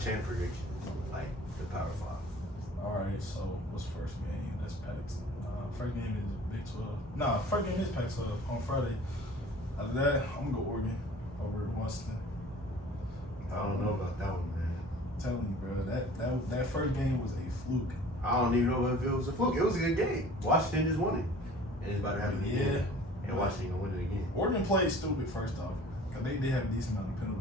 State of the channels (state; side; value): normal; both; correlation 0.47